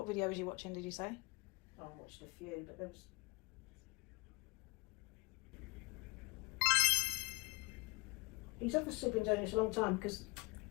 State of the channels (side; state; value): right; quieter; 26.2 dB